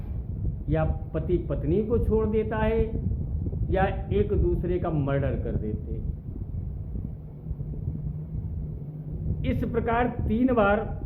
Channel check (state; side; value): identical; both; correlation 1.00